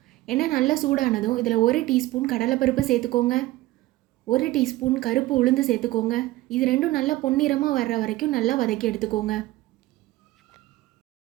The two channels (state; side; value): quieter; left; 17.6 dB